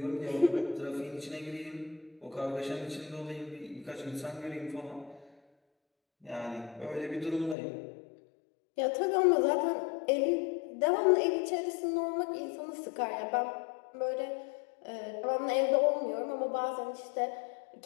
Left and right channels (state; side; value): drops out; right; at 7.6 s